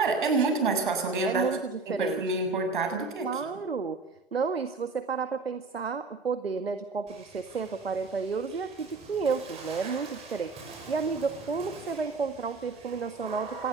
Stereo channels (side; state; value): left; quieter; 4.0 dB